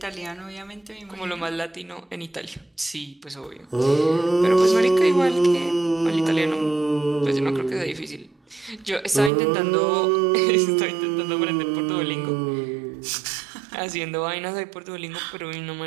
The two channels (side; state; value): left; drops out; at 9.3 s